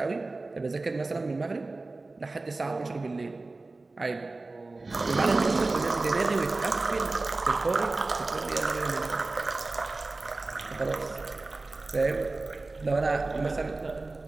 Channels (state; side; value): quieter; left; 3.3 dB